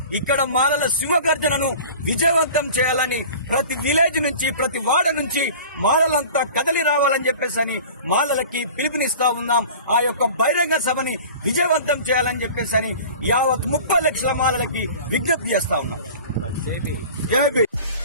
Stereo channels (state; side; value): inverted; both; correlation -0.41